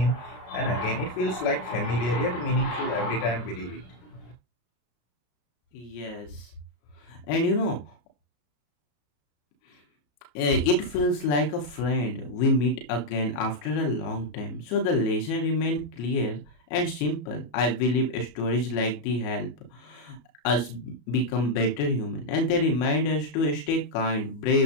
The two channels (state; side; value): late; right; 34 ms